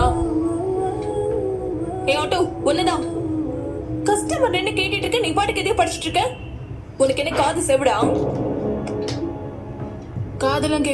ஆட்டோ ஒண்ணுதான். கஸ்டமர் என்ன கேட்டுட்டு இருக்க, நீ பாட்டுக்கு எதையும் படிச்சுட்டு இருக்க. உனக்கு என்ன காது செவிடா? காதெல்லாம்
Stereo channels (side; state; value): both; identical; correlation 1.00